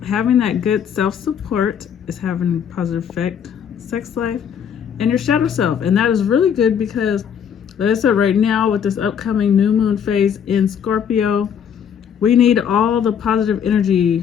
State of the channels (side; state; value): right; quieter; 8.0 dB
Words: having that good self-support is having a positive effect, sex life, and your shadow self. And that is really good because, like I said, right now with this upcoming new moon phase in Scorpio, we need all the positive energy